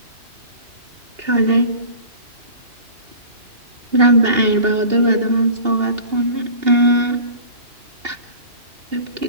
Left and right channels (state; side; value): late; left; 2.8 ms